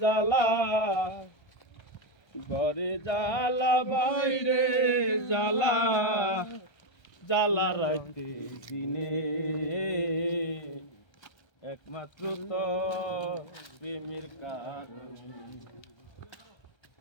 ঘরে জ্বালা বাইরে জ্বালা জ্বালা রাইতে দিনে একমাত্র তোর প্রেমের কারণে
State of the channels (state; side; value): late; right; 1.3 ms